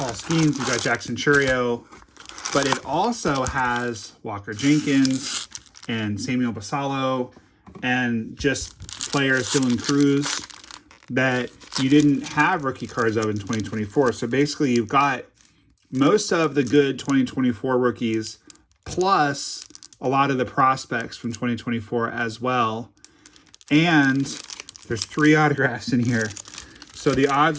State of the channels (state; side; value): identical; both; correlation 1.00